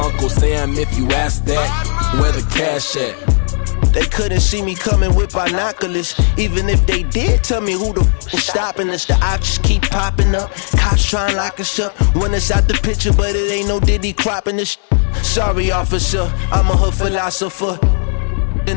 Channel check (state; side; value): silent; right; 57 dB below the other